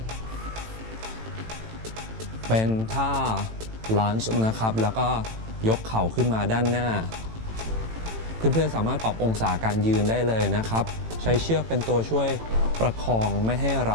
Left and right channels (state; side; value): late; left; 18 ms